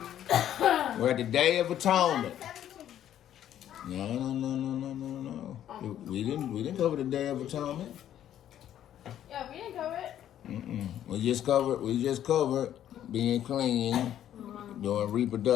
We're at the Day of Atonement. No. We didn't cover the Day of Atonement. Yeah, we didn't cover it. We just covered being clean, doing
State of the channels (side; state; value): right; quieter; 11.1 dB